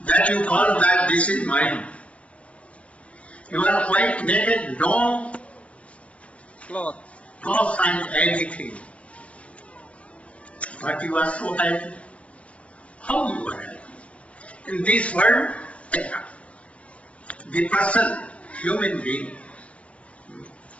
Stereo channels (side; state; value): right; late; 0.063 ms